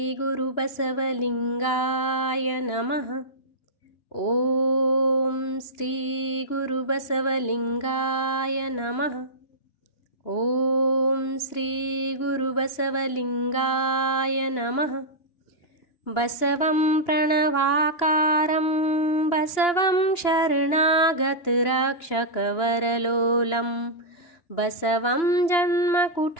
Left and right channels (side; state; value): right; late; 2.9 ms